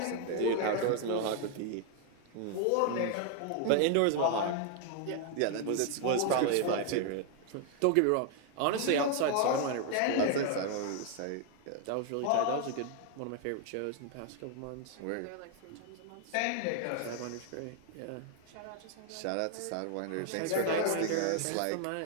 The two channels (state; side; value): different; both; correlation 0.00